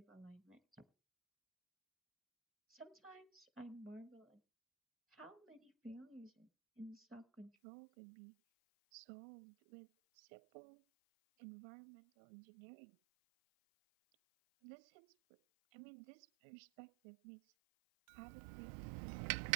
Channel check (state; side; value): drops out; left; at 7.5 s